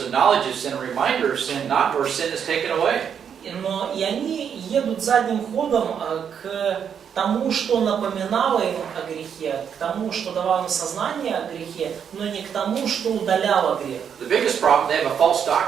a knowledge of sin, a reminder of sin, not where sin is taken away. Но и они едут задним ходом к тому, что напоминало им о грехе, к тому, что давало им сознание о грехе, но не к тому, что удаляло грех. The biggest problem, they have a false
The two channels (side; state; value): left; quieter; 7.8 dB